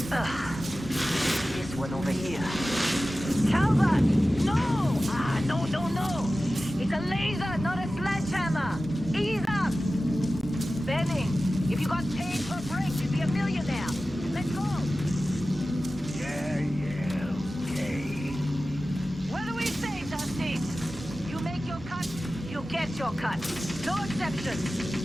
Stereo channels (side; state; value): both; normal; correlation 0.95